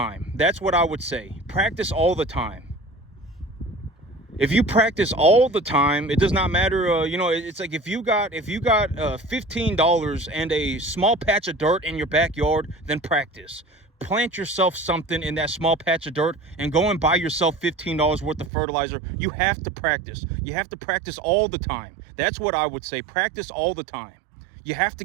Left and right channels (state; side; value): drops out; left; at 18.5 s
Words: That's what I would say. Practice all the time. If you practice all the time, it does not matter. It's like, if you got $15 and a small patch of dirt in your backyard, then practice. Plant yourself something in that small patch of dirt and go and buy yourself $15 worth of fertilizer. You have to practice. You have to practice all the time. That's what I would say. Practice all the time. You have to